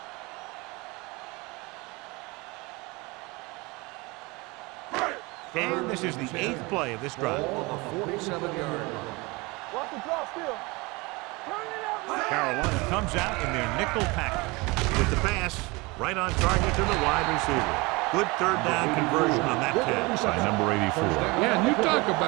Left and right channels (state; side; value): quieter; left; 25.0 dB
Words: And this is the 8th play of this drive. Ball on the 47-yard line. Watch the drop still. Turn it up. Carolina comes out in their nickel package. With the pass, right on target to the wide receiver. Good third down conversion on that catch by number 84. Yeah, and you talk